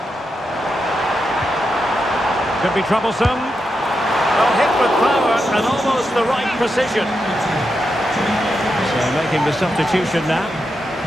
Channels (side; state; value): both; normal; correlation 0.86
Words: Could be troublesome. Well, hit with power and almost the right precision. So making the substitution now.